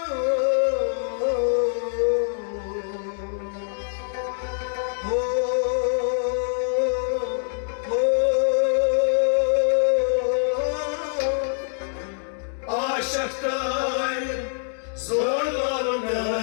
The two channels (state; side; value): silent; right; digital silence